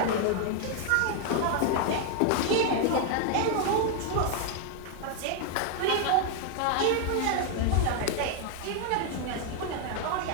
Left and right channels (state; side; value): different; both; correlation 0.00